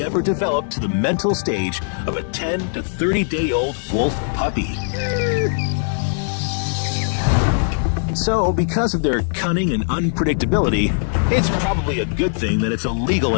ever develop to the mental stage of a 10 to 30-day-old wolf puppy. So, because of their cunning and unpredictability, it's probably a good thing that it's illegal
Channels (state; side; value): silent; right; digital silence